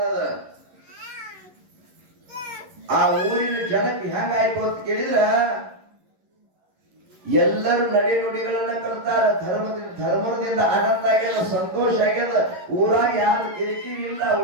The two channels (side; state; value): left; late; 11 ms